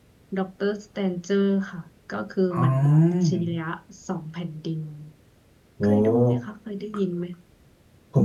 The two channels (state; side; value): identical; both; correlation 1.00